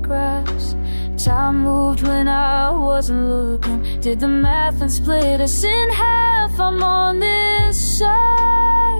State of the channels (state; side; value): inverted; both; correlation -1.00